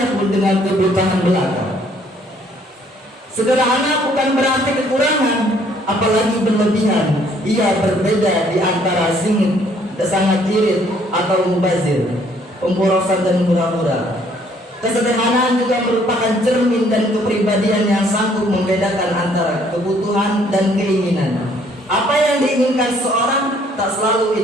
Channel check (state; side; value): normal; both; correlation 0.63